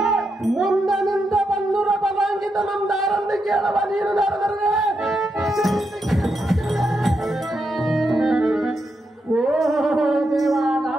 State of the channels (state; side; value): normal; both; correlation 0.83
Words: ಮುಂದನಿಂದ ಬನ್ನೂರ ಬಲಾಂಗಿತ ನಮ್ಮ ದಾರನ್ನು ಕೇಳವ ನೀನು ನಾರದರೆ ಓ ದೇವ